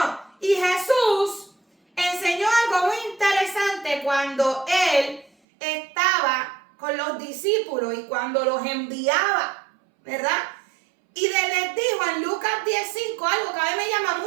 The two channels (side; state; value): left; drops out; at 5.3 s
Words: y Jesús enseñó algo muy interesante cuando él estaba con los discípulos y cuando los enviaba, ¿verdad? Y les dijo en Lucas 10:5 algo que a mí me llama